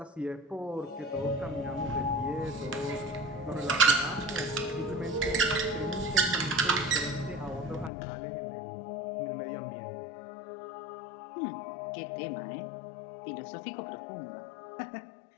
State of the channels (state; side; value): drops out; right; at 7.9 s